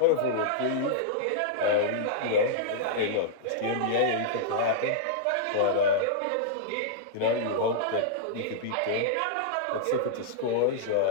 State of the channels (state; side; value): different; both; correlation -0.02